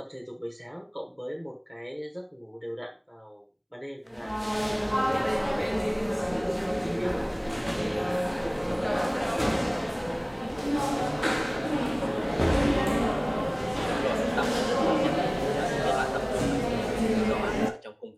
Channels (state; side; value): identical; both; correlation 1.00